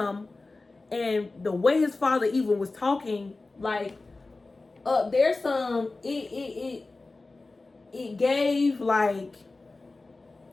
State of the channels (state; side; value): quieter; right; 3.4 dB